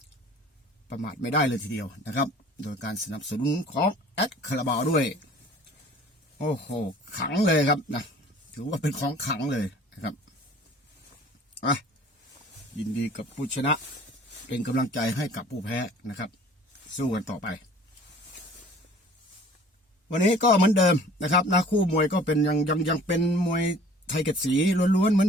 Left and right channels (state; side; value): normal; both; correlation 0.49